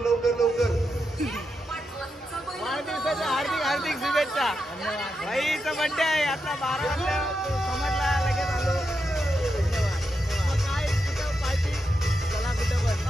वाढदिवसाच्या हार्दिक शुभेच्छा. भाईचा बर्थडे आहे आता 12 वाजता, समजला लगेच आलो. काय कुठं पार्टी? चला कुठं पण.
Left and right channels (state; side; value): normal; both; correlation 0.85